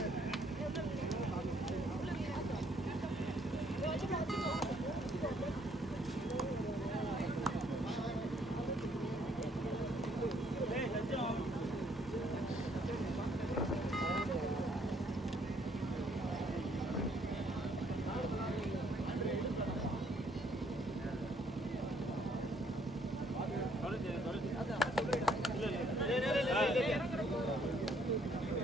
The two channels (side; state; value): both; normal; correlation 0.66